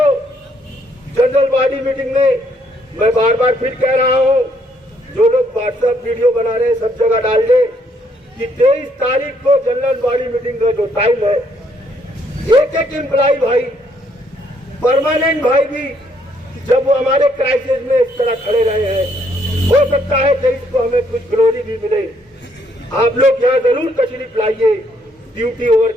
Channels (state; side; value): normal; both; correlation 0.70